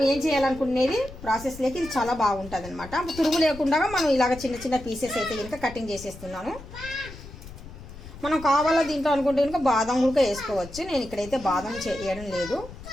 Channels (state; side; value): noise; left; rumble, 15 dB below the sound